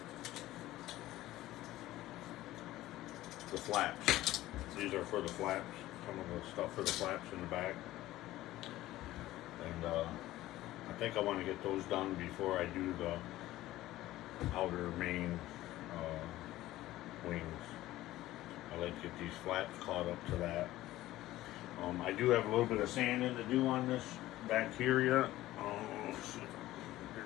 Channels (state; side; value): quieter; right; 15.8 dB